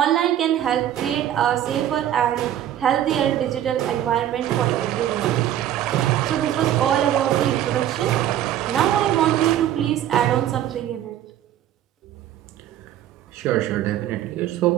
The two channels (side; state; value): left; quieter; 11.6 dB